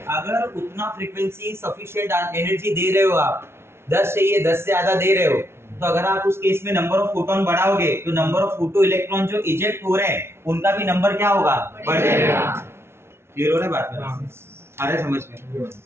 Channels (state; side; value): late; left; 0.12 ms